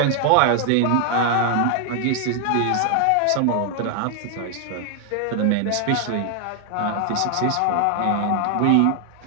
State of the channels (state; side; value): different; both; correlation 0.00